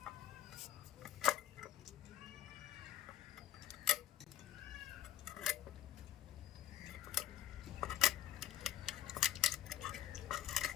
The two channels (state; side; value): quieter; right; 12.0 dB